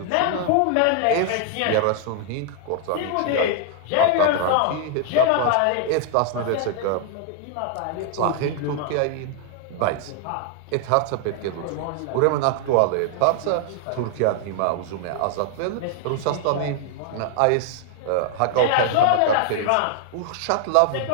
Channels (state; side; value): different; both; correlation 0.00